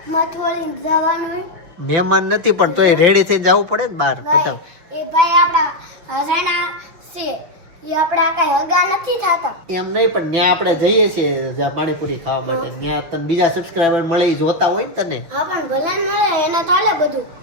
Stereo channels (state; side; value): late; left; 6.3 ms